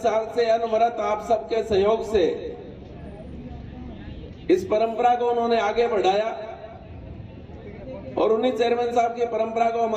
साल से अनवरत आप सबके सहयोग से इस परंपरा को उन्होंने आगे बढ़ाया, और उन्हीं चेयरमैन साहब की परंपरा को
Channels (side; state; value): both; identical; correlation 1.00